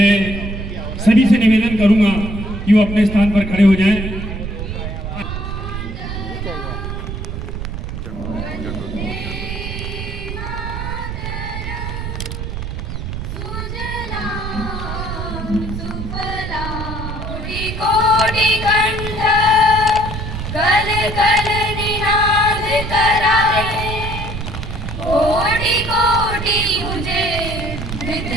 सभी से निवेदन करूंगा कि वो अपने स्थान पर खड़े हो जाएं।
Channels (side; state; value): right; noise; rumble, 6 dB below the sound